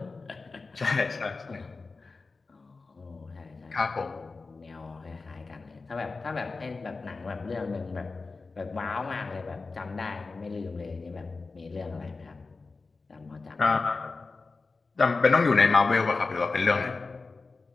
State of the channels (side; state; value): right; quieter; 4.0 dB